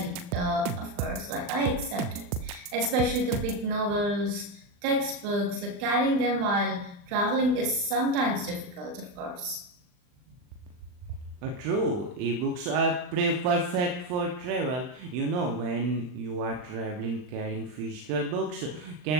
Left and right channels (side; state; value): left; late; 39 ms